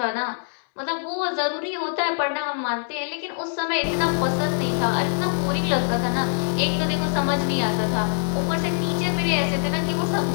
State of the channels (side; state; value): right; silent; 63 dB below the other